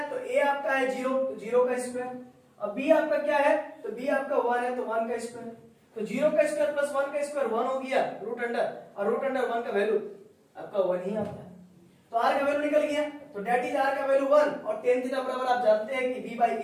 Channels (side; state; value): both; identical; correlation 1.00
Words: तो a आपका है 0, तो 0 का स्क्वायर, और b आपका क्या है, तो b आपका 1 है तो 1 का स्क्वायर, तो 0 का स्क्वायर प्लस 1 का स्क्वायर 1 हो गया रूट अंडर, और रूट अंडर 1 का वैल्यू आपका 1 ही आता है, तो r का वैल्यू निकल गया, तो डेट इज r का वैल्यू 1, और tan थीटा बराबर आप जानते हैं कि b बाई